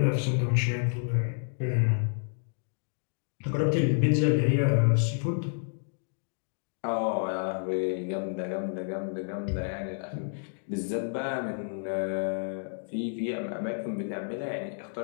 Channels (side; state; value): right; silent; digital silence